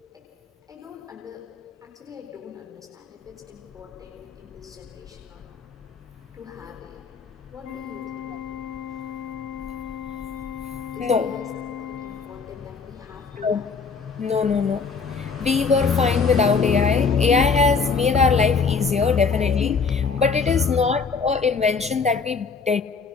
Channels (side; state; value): right; quieter; 5.1 dB